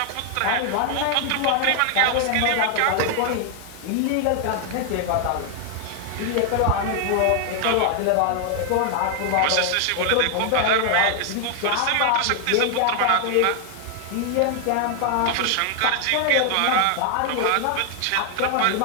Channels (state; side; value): different; both; correlation 0.00